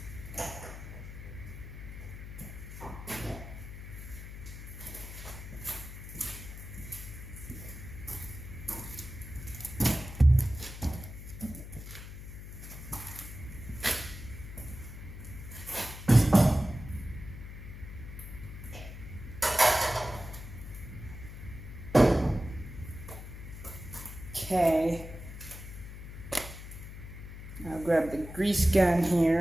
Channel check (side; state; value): left; noise; hum, 11 dB below the sound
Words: Okay, I'll grab the grease gun